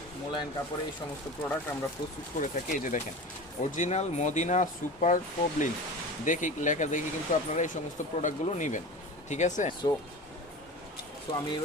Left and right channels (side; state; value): both; normal; correlation 0.33